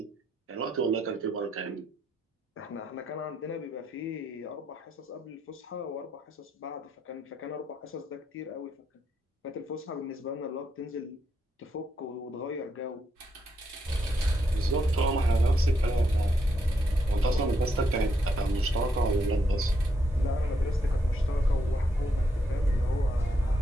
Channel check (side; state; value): both; normal; correlation 0.78